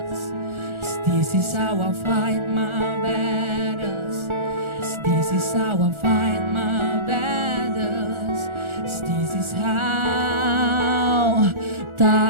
This is how I fight my battles. This is how I fight my battles. This is how.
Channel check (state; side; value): late; left; 1.4 ms